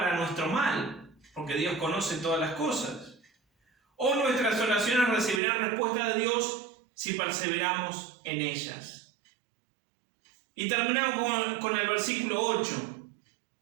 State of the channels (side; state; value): left; drops out; at 5.4 s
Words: nuestro mal, porque Dios conoce todas las cosas. O nuestras oraciones recibirán respuesta de Dios si perseveramos en ellas. Y terminamos con el versículo 8.